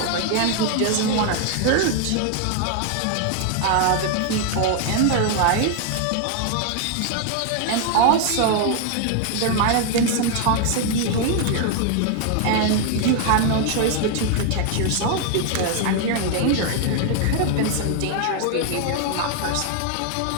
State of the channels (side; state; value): both; different; correlation 0.00